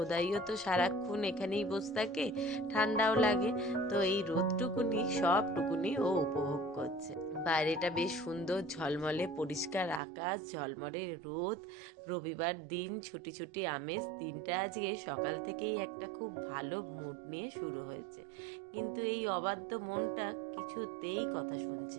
তো সারাক্ষণ এখানেই বসে থাকে, ঠান্ডাও লাগে। তো এই রোদটুকুনি সবটুকুনি ও উপভোগ করছে। বাইরেটা বেশ সুন্দর ঝলমলে পরিষ্কার আকাশ, ঝলমলে রোদ, রবিবার দিন, ছুটি ছুটি আমেজ। দিনটা আজকে সকাল থেকেই একটা খুব ভালো মুড নিয়ে শুরু হয়েছে। কিন্তু এই অবাধ্য মনটা কিছুতেই কথা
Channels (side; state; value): left; drops out; at 10.0 s